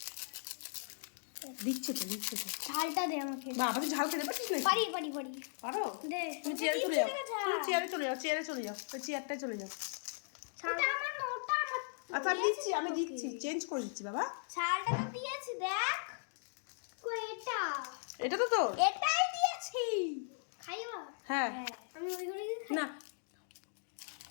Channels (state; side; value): silent; right; digital silence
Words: দিচ্ছে তো ঝালটা দে আমাকে। বাবা, তুই ঝাল খেতে পারছিস না? পারি পারো? দে। তুমি চেয়ারে চলে যাও, তুমি চেয়ারে চলে যাও, ওই চেয়ারটায় চলে যাও। ওটা আমার না, ওটা আমার। আচ্ছা আমি দিচ্ছি, চেঞ্জ করে দিচ্ছি বাবা। ঝালটা তো দিয়েছি, দেখ কই এটা। এটা তো তোর। এটাই দিয়েছি। খাইবা? হ্যাঁ। আমি ওইগুলো খাই না,